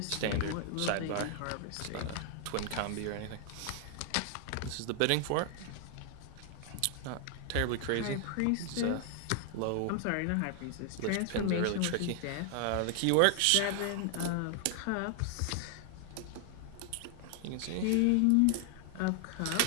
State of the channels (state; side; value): different; both; correlation 0.00